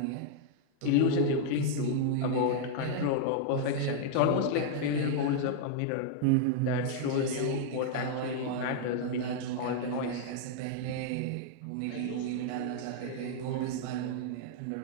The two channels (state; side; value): different; both; correlation -0.01